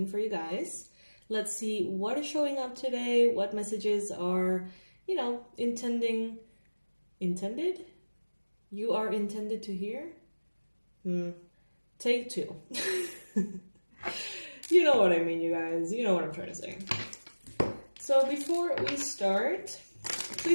for you guys. Let's see what is showing up today, what messages are, intended? You are intended to hear? Take two. You know what I mean, you guys. You know what I'm trying to say. So before we start,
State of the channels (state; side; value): inverted; both; correlation -1.00